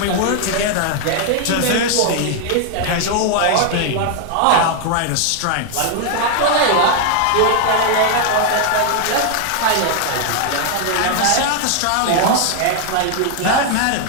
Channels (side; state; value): both; different; correlation 0.00